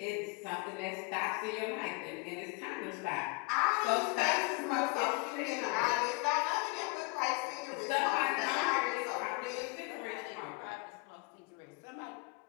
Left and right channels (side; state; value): right; quieter; 28.5 dB